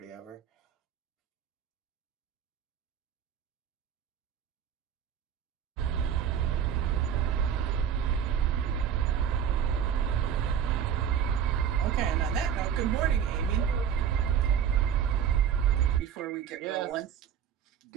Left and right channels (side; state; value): left; quieter; 8.6 dB